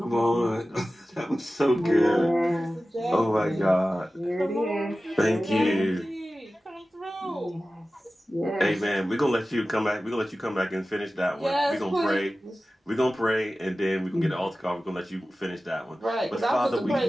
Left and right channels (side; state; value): both; normal; correlation 0.95